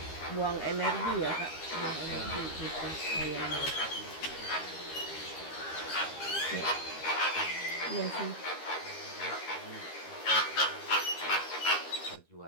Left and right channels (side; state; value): right; late; 13 ms